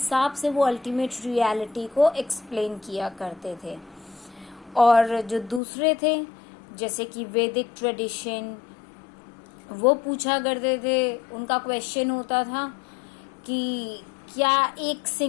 से वो अल्टीमेट रियलिटी को एक्सप्लेन किया करते थे। और जो दूसरे थे, जैसे कि वैदिक ट्रेडिशन, वो पूछा करते थे, उनका क्वेश्चन होता था कि क्या एक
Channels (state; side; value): drops out; right; at 5.6 s